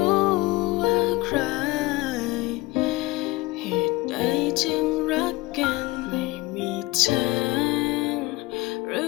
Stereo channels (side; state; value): right; quieter; 20.8 dB